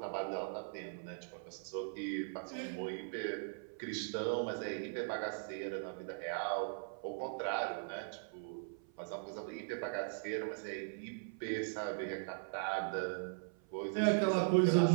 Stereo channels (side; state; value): left; silent; 51 dB below the other